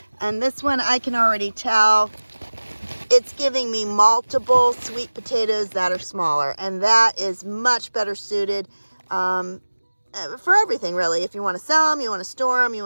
And this one, I can already tell it's giving me multiple sweet potatoes that are smaller. And that is much better suited for everything, really. If you want to sell them, you want to store them, you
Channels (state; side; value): inverted; both; correlation -1.00